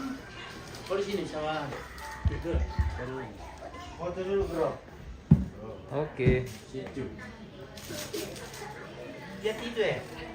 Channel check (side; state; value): both; identical; correlation 1.00